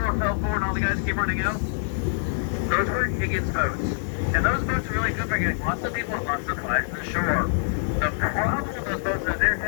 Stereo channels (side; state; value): right; silent; digital silence